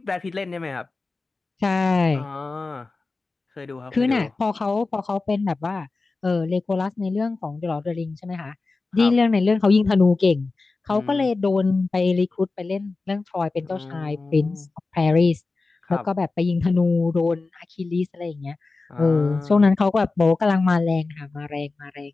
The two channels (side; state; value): right; quieter; 3.7 dB